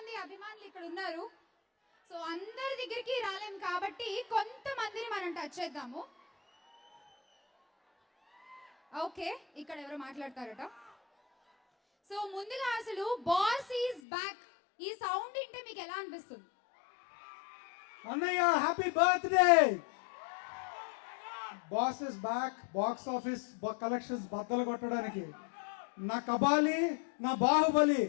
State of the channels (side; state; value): right; drops out; at 14.0 s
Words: అభిమానులు ఇక్కడ ఉన్నారు. సో అందరి దగ్గరికి రాలేం కాబట్టి కొంతమందిని మనం టచ్ చేద్దాము. ఓకే, ఇక్కడ ఎవరు మాట్లాడతారట. సో ముందుగా అసలు బాస్ ఈజ్ బ్యాక్ ఈ సౌండ్ వింటే మీకు ఎలా అనిపిస్తుంది? అన్నయ్య happy birthday. Boss is back. Box office collections బద్దలు కొట్టడానికి నా కబాలి, నా బాహుబలి,